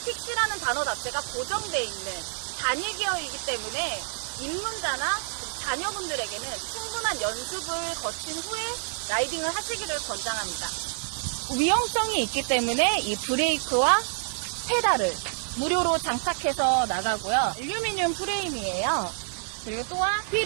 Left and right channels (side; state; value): left; silent; digital silence